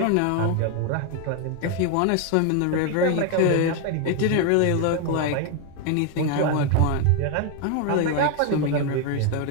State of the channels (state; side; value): different; both; correlation 0.01